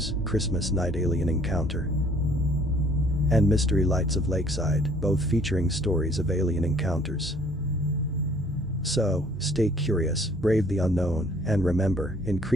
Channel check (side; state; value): both; normal; correlation 0.58